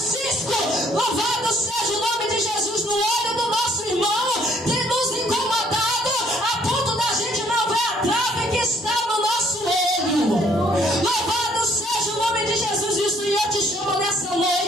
Louvado seja o nome de Jesus no olho do nosso irmão. Tem nos incomodado a ponto da gente não ver a trave que está no nosso olho. Louvado seja o nome de Jesus. E o Senhor te chama nessa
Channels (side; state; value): both; normal; correlation 0.63